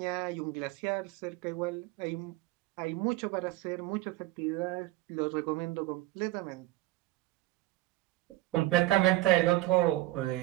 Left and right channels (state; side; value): quieter; left; 17.8 dB